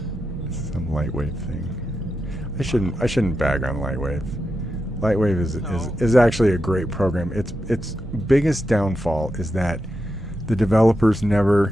It's some Lightwave thing. I shouldn't bag on Lightwave. Lightwave is actually a great program. Its biggest downfall is that the developers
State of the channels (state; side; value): normal; both; correlation 0.87